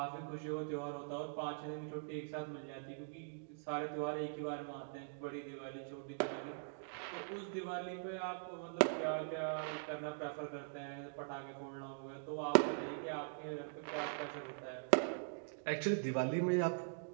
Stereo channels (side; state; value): left; silent; digital silence